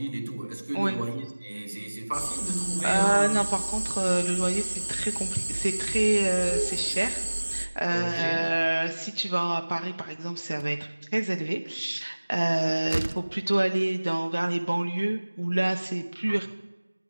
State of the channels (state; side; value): inverted; both; correlation -1.00